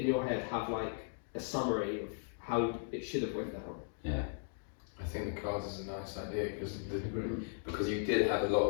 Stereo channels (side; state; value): right; silent; digital silence